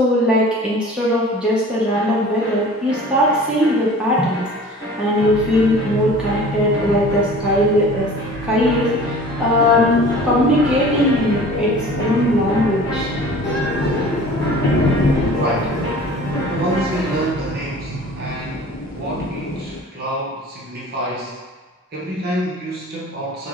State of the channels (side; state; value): both; normal; correlation 0.44